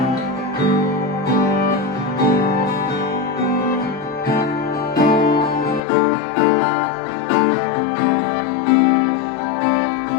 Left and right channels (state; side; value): drops out; right; at 5.8 s